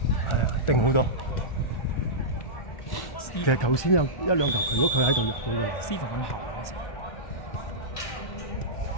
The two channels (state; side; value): late; right; 1.2 ms